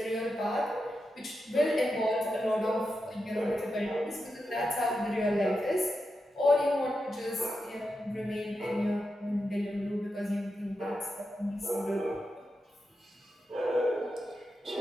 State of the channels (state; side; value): normal; both; correlation 0.88